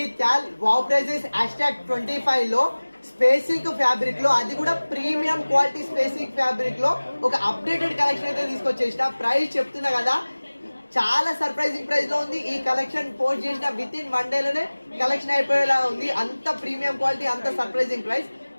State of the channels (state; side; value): inverted; both; correlation -1.00